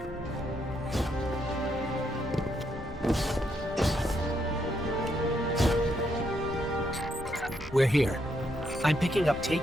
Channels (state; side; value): normal; both; correlation 0.76